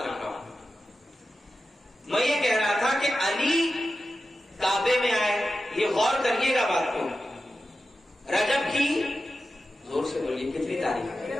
رکھ رہا ہوں. میں یہ کہہ رہا تھا کہ علی کعبے میں آئے. یہ غور کریے گا بات کو. رجب کی زور سے بولیے کتنی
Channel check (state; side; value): normal; both; correlation 0.92